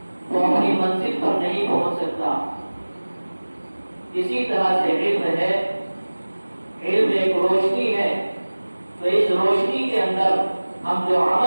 وہ اپنی منزل پر نہیں پہنچ سکتا. اسی طرح سے علم ہے، علم ایک روشنی ہے. تو اس روشنی کے اندر ہم جو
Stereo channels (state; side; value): inverted; both; correlation -1.00